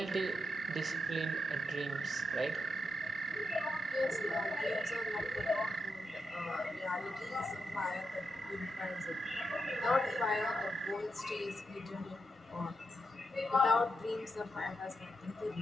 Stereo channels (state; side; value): normal; both; correlation 0.84